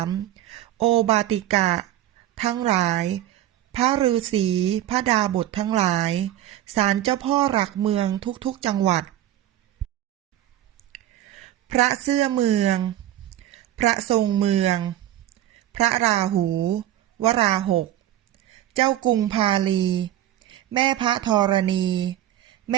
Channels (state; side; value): quieter; left; 12.8 dB